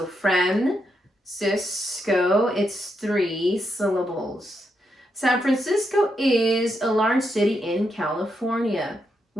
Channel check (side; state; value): both; normal; correlation 0.81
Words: Francisco, it's 3 syllables. San Francisco is a large city in California.